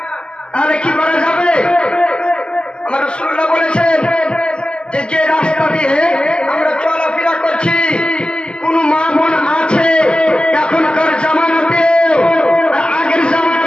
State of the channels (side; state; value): right; late; 0.050 ms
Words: তাহলে কি করা যাবে? আমার রাসূলুল্লাহ বলেছেন যে রাস্তা দিয়ে আমরা চলাফেরা করছি, কোন মা বোন আছে এখনকার জামানাতে আগের